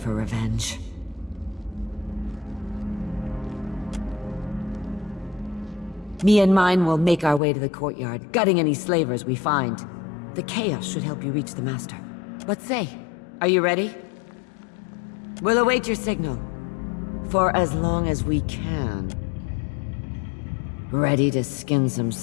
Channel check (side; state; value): right; drops out; at 7.4 s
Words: revenge. Me and mine will make our way to the courtyard, gutting any slavers we find. The chaos should help you reach the master. But say, are you ready? We'll await your signal. For as long as we can. Ready to skin some